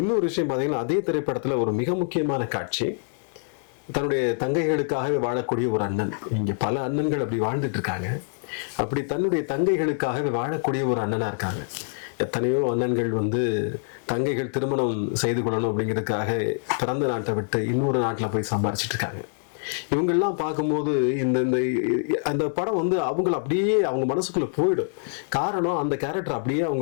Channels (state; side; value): silent; right; digital silence